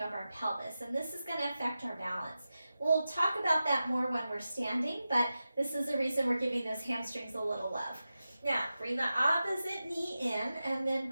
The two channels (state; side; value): inverted; both; correlation -0.92